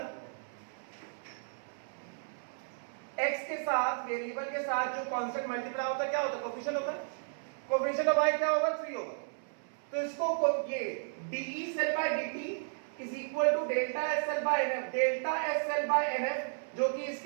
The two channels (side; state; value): left; silent; 55 dB below the other